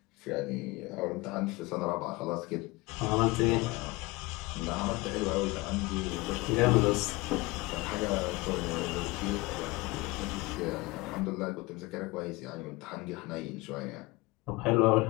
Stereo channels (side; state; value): right; quieter; 22.8 dB